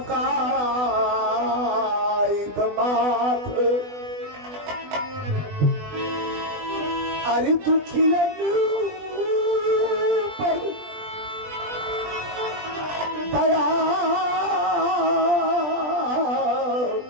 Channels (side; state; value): left; late; 20 ms